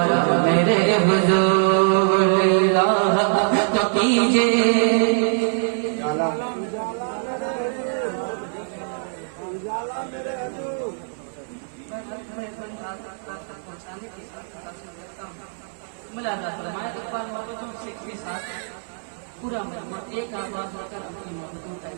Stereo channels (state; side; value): silent; left; digital silence